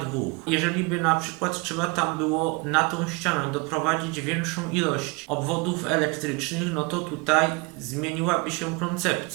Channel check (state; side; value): quieter; left; 27.8 dB